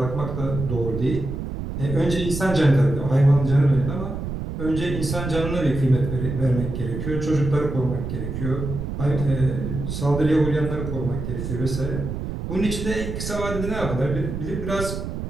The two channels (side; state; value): right; noise; rumble, 5 dB below the sound